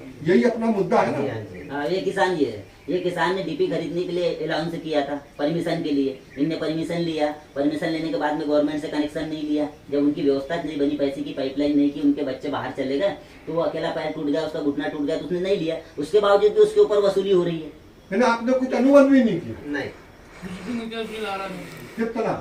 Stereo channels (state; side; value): identical; both; correlation 1.00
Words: यही अपना मुद्दा है ना। हाँ, ये किसान ये है। ये किसान ने डीपी खरीदने के लिए अलाउंस किया था परमिशन के लिए। इनने परमिशन लिया, परमिशन लेने के बाद में गवर्नमेंट से कनेक्शन नहीं लिया। जब उनकी व्यवस्था नहीं बनी, पैसे की पाइपलाइन नहीं की, उनके बच्चे बाहर चले गए तो वो अकेला पैर टूट गया, उसका घुटना टूट गया, तो उसने नहीं लिया। उसके बावजूद भी उसके ऊपर वसूली हो रही है। मैंने आपने कुछ अनुबंध भी नहीं किया। नहीं। बिल आ रहा नहीं। कितना?